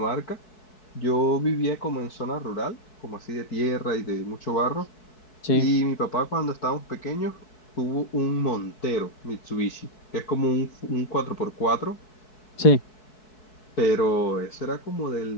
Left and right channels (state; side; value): late; right; 4.6 ms